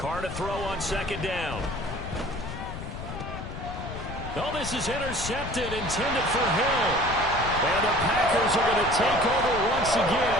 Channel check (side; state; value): left; noise; rumble, 8 dB below the sound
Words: to throw on second down. Oh, this is intercepted, intended for Hill. And the Packers are going to take over once